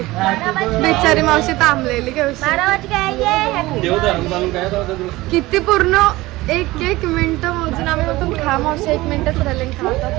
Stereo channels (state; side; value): quieter; left; 19.2 dB